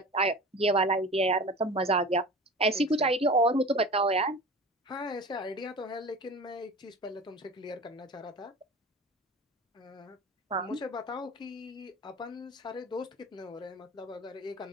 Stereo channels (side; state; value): both; normal; correlation 0.36